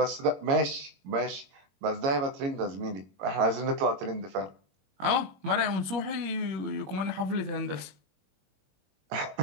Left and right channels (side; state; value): left; late; 21 ms